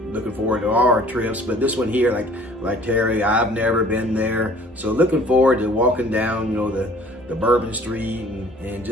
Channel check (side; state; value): both; normal; correlation 0.52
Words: looking forward to all our trips, but this one here, like Terry, I've never been there, so looking forward to walking down, you know, the Bourbon Street and